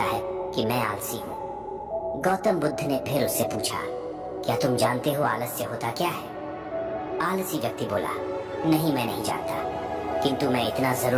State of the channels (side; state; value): both; identical; correlation 1.00